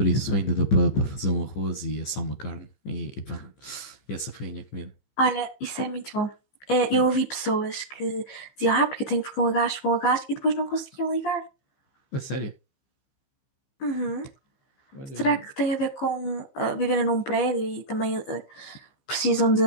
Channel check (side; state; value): right; late; 15 ms